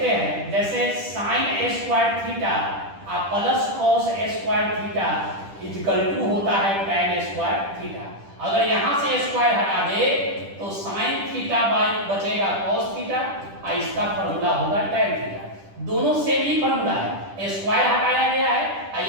हैं जैसे sin square theta plus cos square theta equal to होता है tan स्क्वायर थीटा। अगर यहाँ से स्क्वायर हटा दे तो sin थीटा बाय बचेगा cos थीटा, और इसका फॉर्मूला होगा tan थीटा। दोनों सेम ही फॉर्मूला है, स्क्वायर हटाया गया है और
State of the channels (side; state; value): left; late; 10 ms